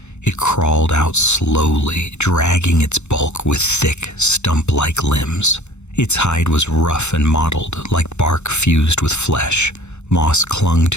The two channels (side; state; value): right; late; 0.82 ms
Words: It crawled out slowly, dragging its bulk with thick, stump-like limbs. Its hide was rough and mottled, like bark fused with flesh. Moss clung